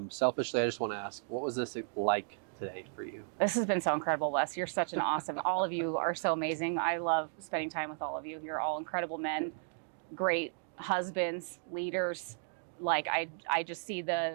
Selfishly, I just want to ask, what was this like today for you? This has been so incredible, Wes. You're such an awesome, all of you are so amazing. I love spending time with all of you. You're all incredible men, great husbands, leaders. Like I just see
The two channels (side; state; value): left; silent; digital silence